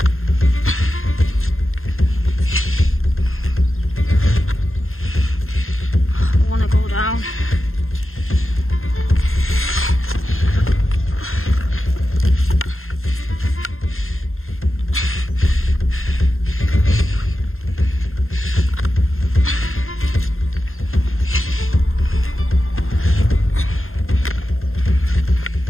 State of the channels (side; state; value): right; late; 0.61 ms